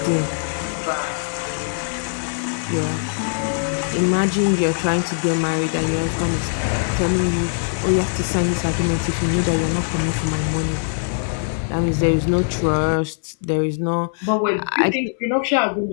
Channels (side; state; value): right; silent; 65 dB below the other